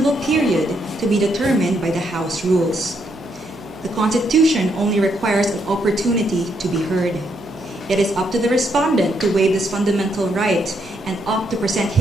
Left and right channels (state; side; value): noise; right; hum, 21 dB below the sound